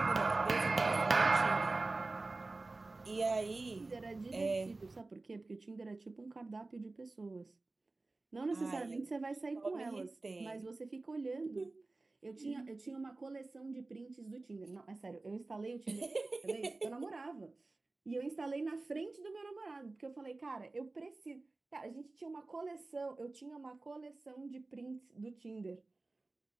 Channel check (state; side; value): quieter; left; 3.3 dB